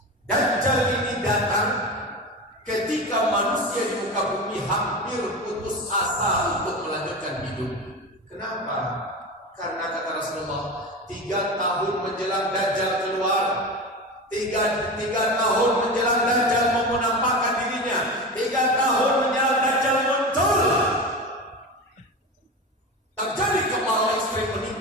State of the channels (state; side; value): normal; both; correlation 0.26